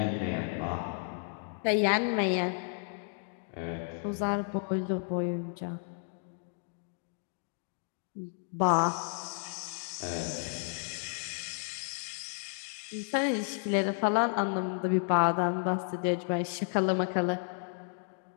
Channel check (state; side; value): silent; right; 56 dB below the other